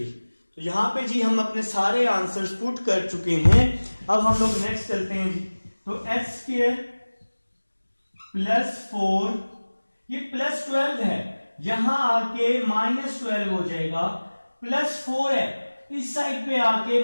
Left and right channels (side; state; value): both; inverted; correlation -1.00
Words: तो यहां पे जी हम अपने सारे आंसर्स पुट कर चुके हैं। अब हम लोग नेक्स्ट चलते हैं जी, तो h स्क्वायर प्लस 4, ये प्लस 12 है, यहां आके माइनस 12 हो जाएगा, प्लस 4 है, इस साइड पे आके